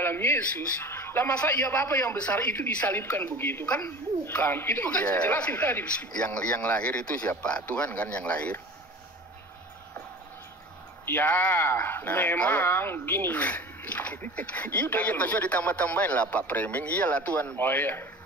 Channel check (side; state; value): both; normal; correlation 0.38